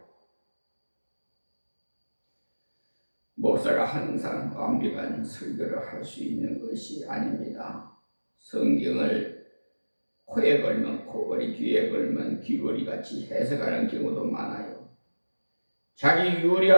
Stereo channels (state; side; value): inverted; both; correlation -1.00